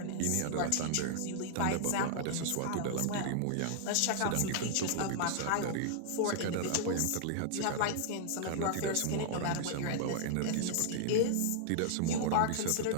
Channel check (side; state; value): both; different; correlation -0.01